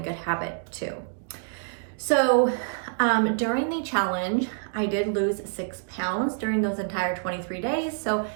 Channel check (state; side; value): silent; left; digital silence